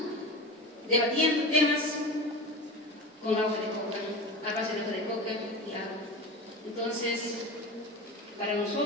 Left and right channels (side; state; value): both; normal; correlation 0.28